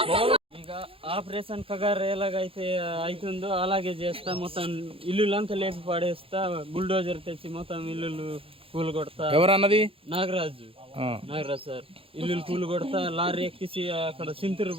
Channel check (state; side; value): late; left; 0.27 ms